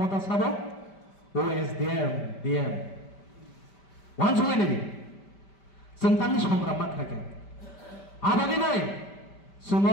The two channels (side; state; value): right; late; 5.1 ms